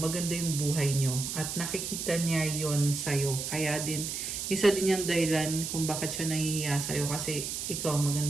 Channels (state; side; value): noise; right; hiss, 4 dB below the sound